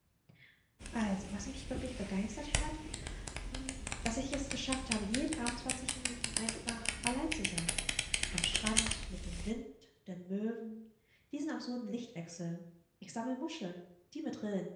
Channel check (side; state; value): both; identical; correlation 1.00